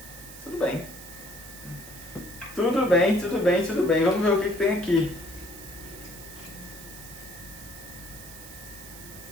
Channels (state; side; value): noise; right; hiss, 15 dB below the sound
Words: Tudo bem. Tudo bem, tudo bem, tudo bem. Vamos ver o que tem aqui.